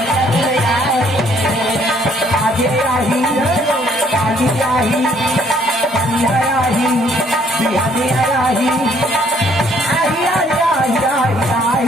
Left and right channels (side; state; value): both; normal; correlation 0.64